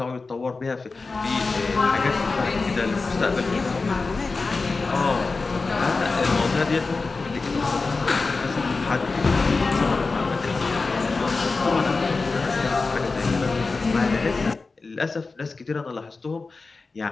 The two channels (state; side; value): quieter; right; 4.0 dB